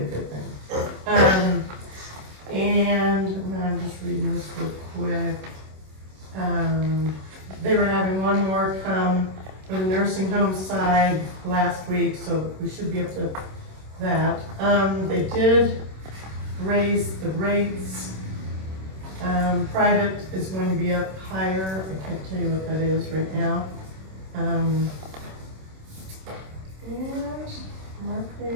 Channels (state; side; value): late; left; 26 ms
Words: good thing. And I'm just reading this real quick. They were having one more come for the nursing home side last week, so we should be up to that. They did raise the rates. Private is going to be up higher. I can't tell you what that is right now. And